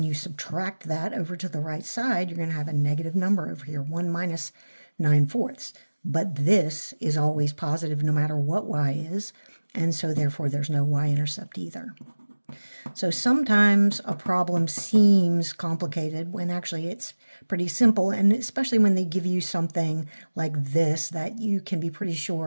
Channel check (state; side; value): inverted; both; correlation -1.00